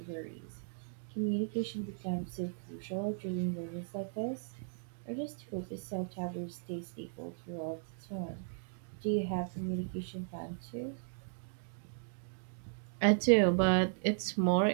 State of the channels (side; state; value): left; silent; digital silence